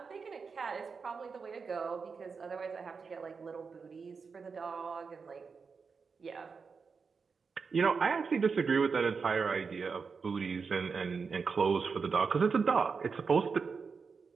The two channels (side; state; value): left; quieter; 5.2 dB